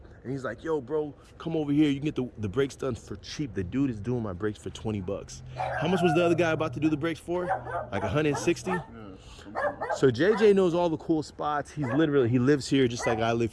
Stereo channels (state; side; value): identical; both; correlation 1.00